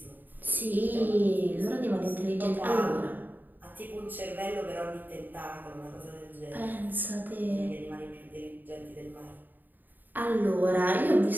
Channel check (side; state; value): left; late; 0.089 ms